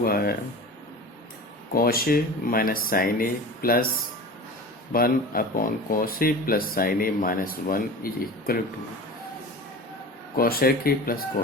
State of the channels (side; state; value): both; normal; correlation 0.35